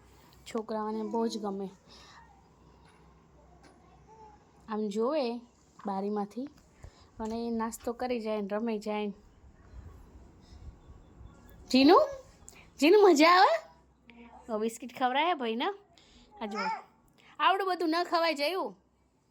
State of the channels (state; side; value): identical; both; correlation 1.00